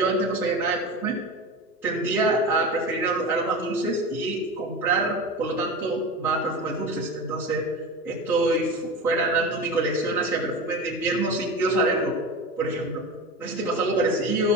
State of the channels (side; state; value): both; normal; correlation 0.28